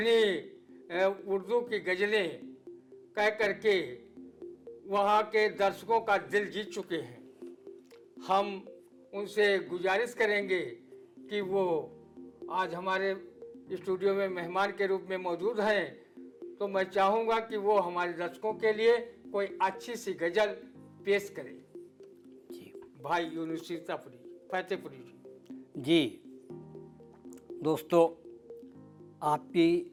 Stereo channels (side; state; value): both; identical; correlation 1.00